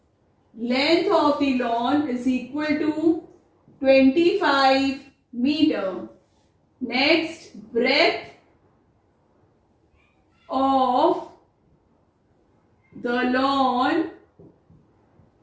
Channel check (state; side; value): identical; both; correlation 1.00